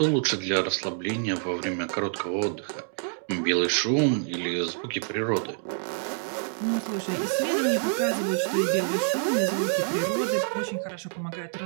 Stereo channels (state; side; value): silent; left; 60 dB below the other